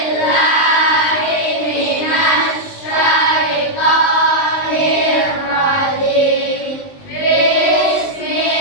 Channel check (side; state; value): right; late; 19 ms